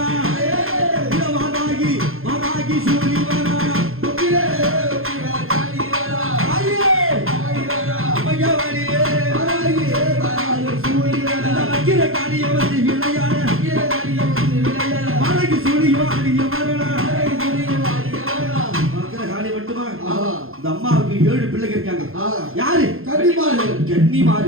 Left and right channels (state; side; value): late; left; 0.61 ms